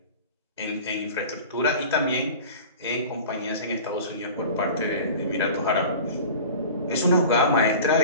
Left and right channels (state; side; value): inverted; both; correlation -0.38